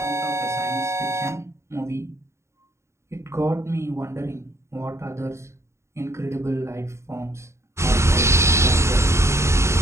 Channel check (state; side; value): late; left; 0.13 ms